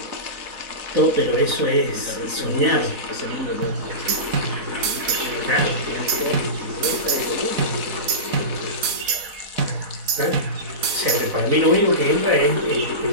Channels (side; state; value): left; late; 4.1 ms